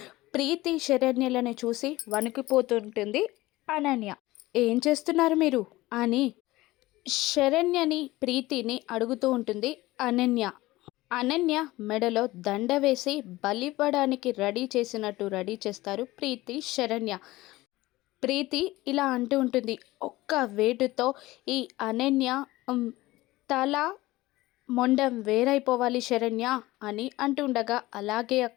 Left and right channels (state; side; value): quieter; right; 18.6 dB